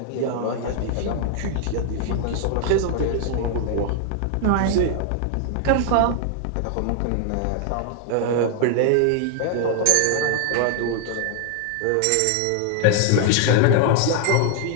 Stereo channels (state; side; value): different; both; correlation 0.00